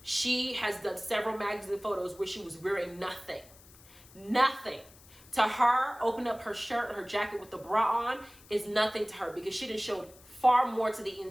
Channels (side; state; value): left; noise; hiss, 23 dB below the sound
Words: She has done several magazine photos where she was wearing nothing. Nothing. To her, open up her shirt or her jacket with the bra on is nothing to her because she done showed far more to the